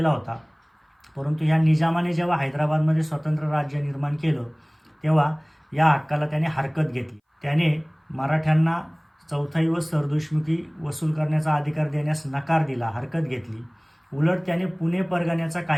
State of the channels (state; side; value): identical; both; correlation 1.00